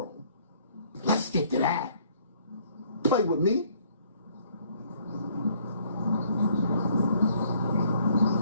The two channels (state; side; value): inverted; both; correlation -0.62